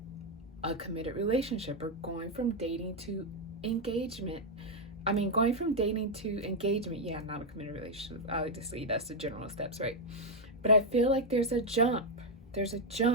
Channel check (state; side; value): normal; both; correlation 0.01